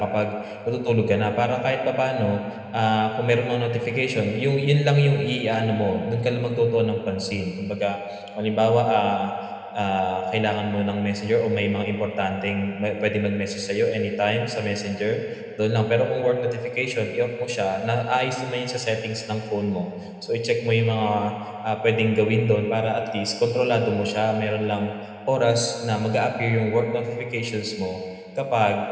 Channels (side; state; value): both; identical; correlation 1.00